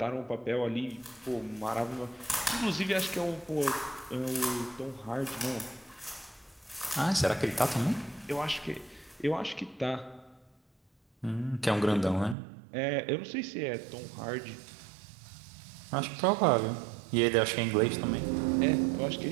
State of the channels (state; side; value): drops out; left; at 12.4 s